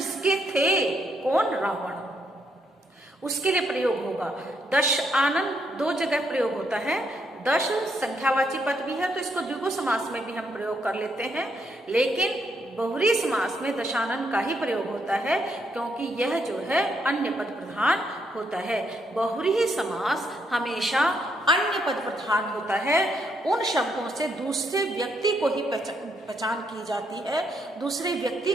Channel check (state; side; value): normal; both; correlation 0.76